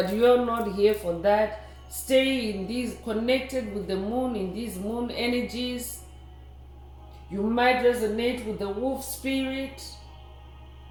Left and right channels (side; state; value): both; identical; correlation 1.00